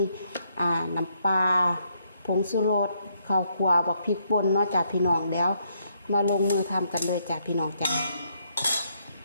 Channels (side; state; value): both; inverted; correlation -0.73